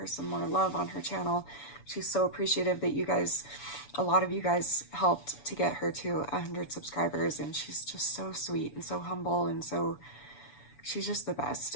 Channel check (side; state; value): right; late; 7.0 ms